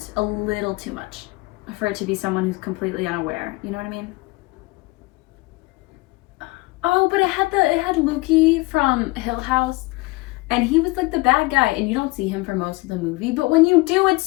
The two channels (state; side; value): quieter; right; 23.2 dB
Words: a little too much for it to be someone who's completely unaware. You know what I mean? Oh, but it had Lukey from Hill House, and he was like the bad guy, and you don't see him for most of the movie, but when you do, it's